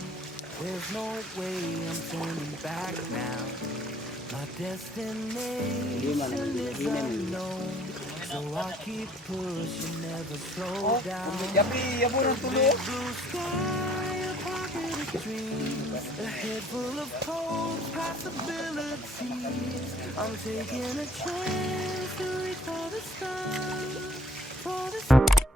There's no way I'm turning back now. My destination is unknown, so I keep pushing, never slow down. Big blue sky, a pocket of dreams, a head full of hopes, possibilities. I'm taking a chance to reach for the stars, for the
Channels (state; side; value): normal; both; correlation 0.57